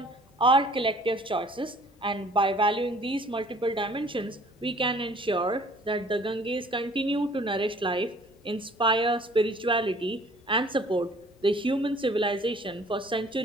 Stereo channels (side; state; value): both; normal; correlation 0.53